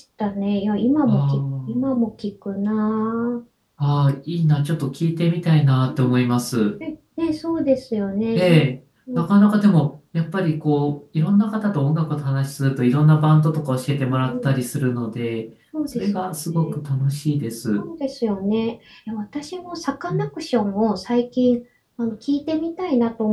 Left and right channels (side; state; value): both; identical; correlation 1.00